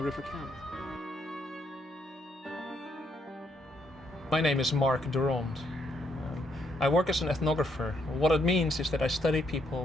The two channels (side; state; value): both; normal; correlation 0.73